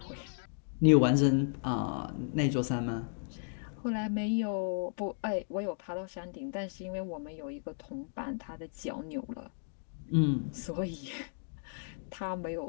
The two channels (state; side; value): silent; right; digital silence